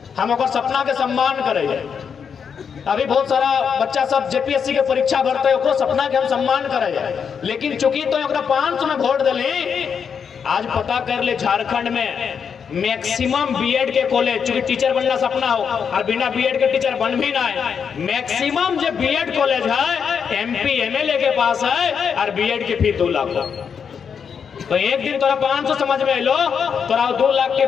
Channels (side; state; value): right; quieter; 6.8 dB